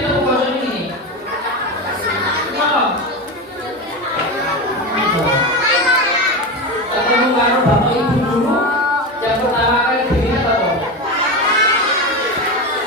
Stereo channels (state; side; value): normal; both; correlation 0.20